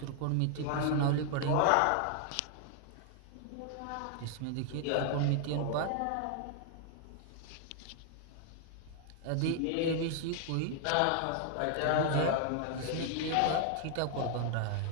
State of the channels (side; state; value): both; different; correlation 0.00